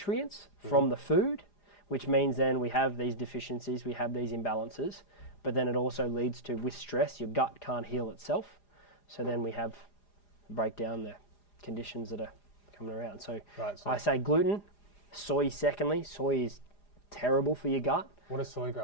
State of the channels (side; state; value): right; late; 4.9 ms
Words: from the food, which means then we have these deficiencies, we have these imbalances. But then it also leads to, with stress, your gut can't heal itself. So then we have breakdown the conditions that are coming around. So, Right, so I say gluten, soy secondly. Soy is terrible for your gut. what does soy